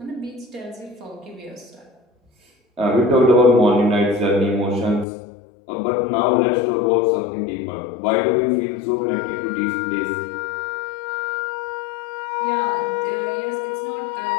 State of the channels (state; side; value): drops out; right; at 5.1 s